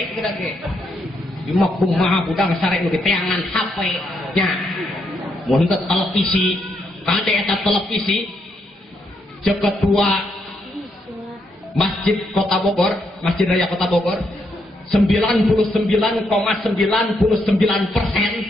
gitu ge cuma kumaha budak sare nu diteangan HP nya mun teu televisi kade eta televisi cek ketua Masjid Kota Bogor, Masjid Raya Kota Bogor 99,99%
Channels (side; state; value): both; normal; correlation 0.77